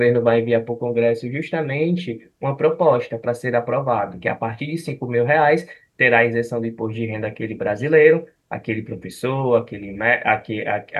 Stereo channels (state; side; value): identical; both; correlation 1.00